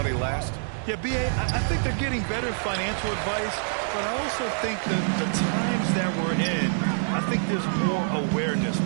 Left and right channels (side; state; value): left; silent; digital silence